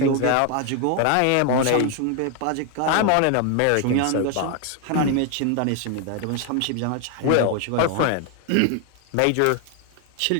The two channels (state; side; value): different; both; correlation 0.01